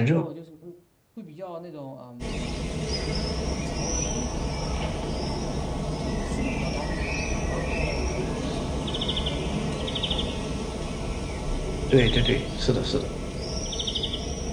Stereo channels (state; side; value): identical; both; correlation 1.00